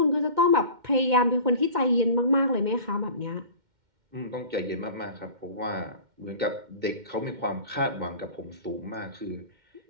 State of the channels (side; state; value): left; late; 2.1 ms